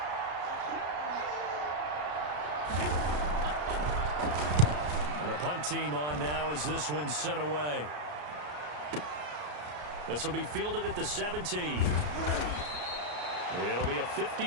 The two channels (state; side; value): late; left; 33 ms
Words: Punt team on now as this one's sent away. This will be fielded at the 17. It'll be a